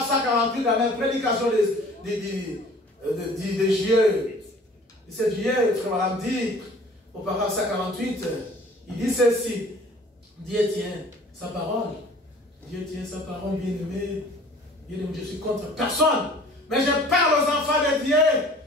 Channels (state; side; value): normal; both; correlation 0.49